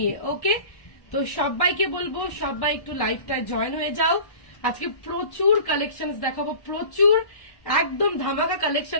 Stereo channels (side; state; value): right; late; 1.1 ms